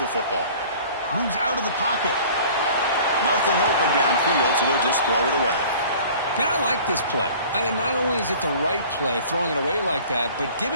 football. Moves out of the pocket. Nothing open downfield, so he'll just throw it away. Man, I like this play. And not only is it the right play, throwing it away like that, but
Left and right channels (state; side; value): inverted; both; correlation -0.47